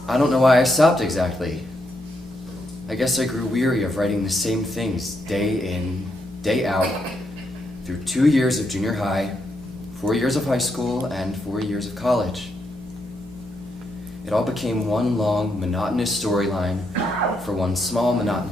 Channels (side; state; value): both; normal; correlation 0.79